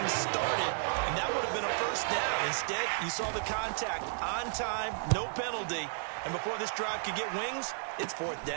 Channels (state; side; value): silent; left; digital silence